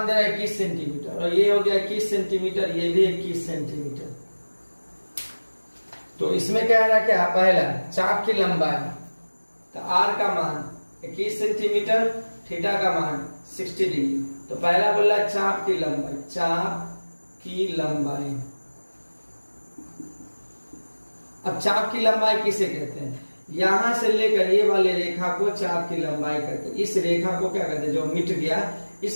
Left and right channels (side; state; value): both; inverted; correlation -1.00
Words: दे रहा है 21 सेंटीमीटर, और ये हो गया 21 सेंटीमीटर, ये भी 21 सेंटीमीटर। तो इसमें क्या है, क्या पहला चाप की लंबाई, तो आर का मान 21 सेंटीमीटर, थीटा का मान 60 डिग्री। तो पहला बोला चाप की लंबाई, चाप की लंबाई। अब चाप की लंबाई किसे कहते हैं, यहां से लेकर ये वाले रेखा को चाप की लंबाई कहते हैं। इस रेखा को क्या कहते हैं, जो मिट गया,